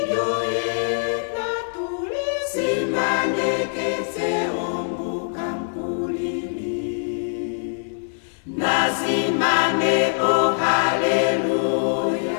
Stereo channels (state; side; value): silent; right; digital silence